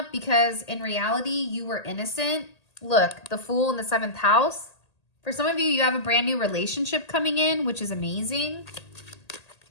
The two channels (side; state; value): right; late; 1.8 ms